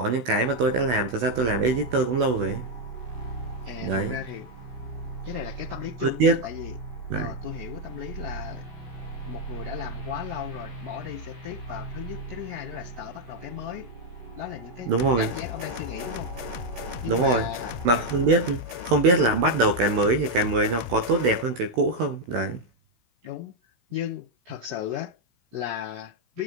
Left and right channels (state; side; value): late; left; 16 ms